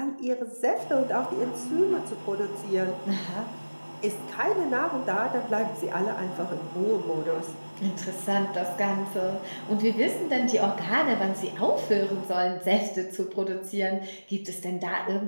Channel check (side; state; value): both; inverted; correlation -1.00